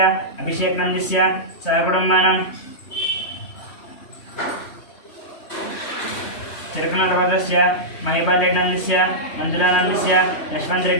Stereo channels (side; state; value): right; late; 3.1 ms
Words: अभिषेकनन्दस्य सहकुटुम्बानां तिरुकनगोत्रस्य महिपालरेड्डनन्दस्य मंजुलानन्दस्य